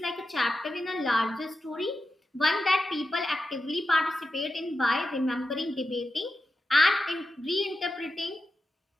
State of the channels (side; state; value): both; normal; correlation 0.90